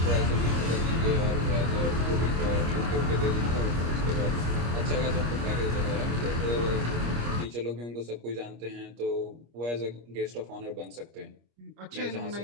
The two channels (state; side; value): late; left; 25 ms